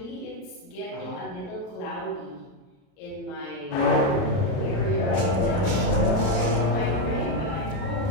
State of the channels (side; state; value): right; late; 37 ms